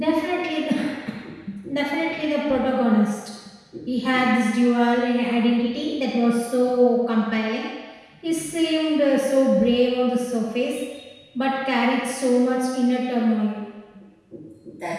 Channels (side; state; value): both; identical; correlation 1.00